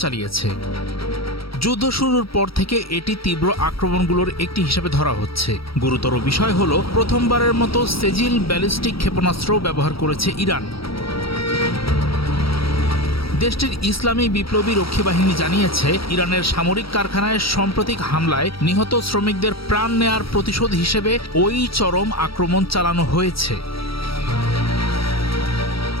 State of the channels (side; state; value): right; late; 0.75 ms